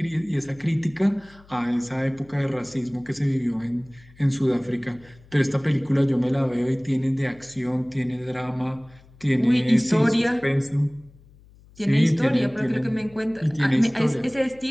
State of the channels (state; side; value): noise; left; hum, 26 dB below the sound